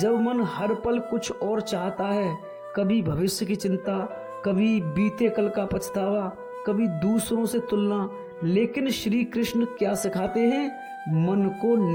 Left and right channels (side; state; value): both; identical; correlation 1.00